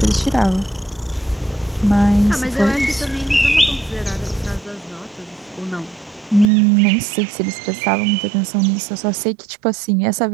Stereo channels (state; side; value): drops out; left; at 6.5 s